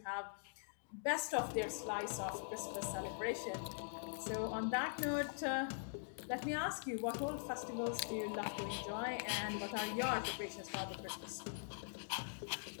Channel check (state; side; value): silent; right; digital silence